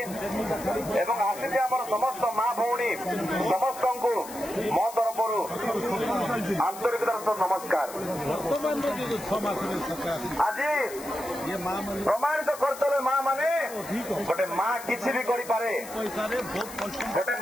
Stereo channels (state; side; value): noise; left; hiss, 14 dB below the sound